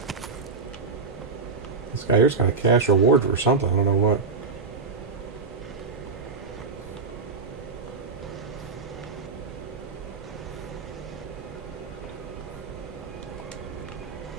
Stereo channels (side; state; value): left; quieter; 4.6 dB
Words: This guy here's got a cash reward for something. I don't know what.